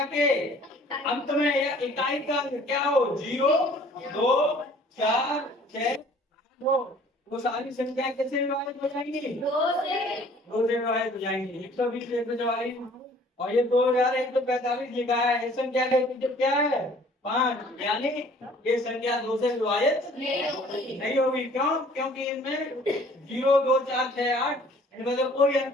के अंत में या इकाई का क्या हो, 0, 2, 4, 6, 8 वो सारी संख्या कैसे विभाजित हो जाएंगी? 2 से विभाजित हो जाएंगी। 120, 144 और ये 2145 लिखा है, इस संख्या का मतलब क्या है? 5, यानी ये संख्या 2 से विभाजित नहीं होगी। क्यों? क्योंकि इनमें 0, 2, 4, 6, 8 इनमें तो कोई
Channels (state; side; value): normal; both; correlation 0.54